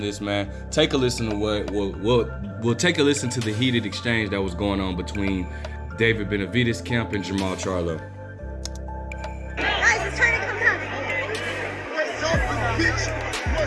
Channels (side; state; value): both; identical; correlation 1.00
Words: man, take a listen to we'll take a listen to the heated exchange that was going on between David Benavidez camp and Jamal Charlo. Guys, it's trying to come down. What's up, you bitch?